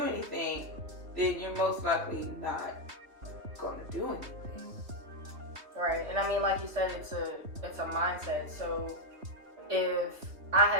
anything, then you're most likely not going to do anything. Right. And I mean, like you said, it's a mindset. So if I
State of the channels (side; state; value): left; late; 3.3 ms